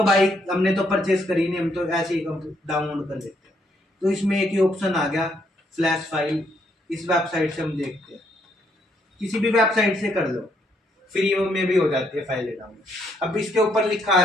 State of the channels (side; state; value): both; normal; correlation 0.73